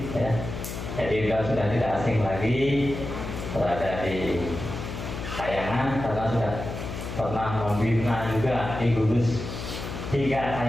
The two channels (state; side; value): noise; left; hum, 7 dB below the sound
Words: ya. Jadi beliau sudah tidak asing lagi berada di Kayangan karena sudah pernah membina juga di gugus tiga